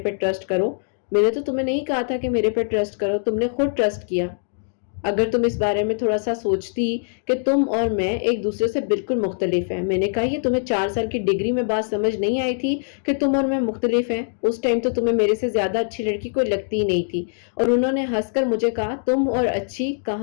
ٹرسٹ کرو، میں نے تو تمہیں نہیں کہا تھا کہ میرے پہ ٹرسٹ کرو، تم نے خود ٹرسٹ کیا۔ اگر تم اس بارے میں تھوڑا سا سوچتی کہ تم اور میں ایک دوسرے سے بالکل مختلف ہیں۔ میں نے کہا یہ تمہیں 4 سال کی ڈگری میں بات سمجھ نہیں آئی تھی کہ تم اور میں مختلف ہیں؟ اس ٹائم تو تمہیں میرے سے زیادہ اچھی لڑکی کوئی لگتی ہی نہیں تھی۔ اور انہوں نے ہنس کر مجھے کہا تم اور اچھی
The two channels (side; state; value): right; silent; digital silence